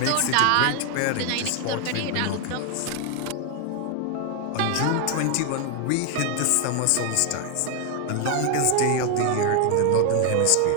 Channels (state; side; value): different; both; correlation 0.01